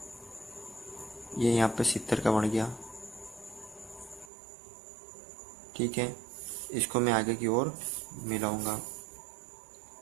ये यहाँ पे 70 का बन गया। ठीक है, इसको मैं आगे की ओर मिलाऊंगा।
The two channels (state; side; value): drops out; left; at 4.3 s